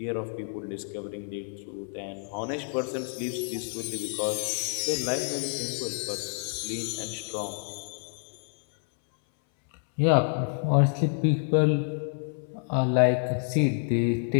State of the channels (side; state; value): right; silent; 59 dB below the other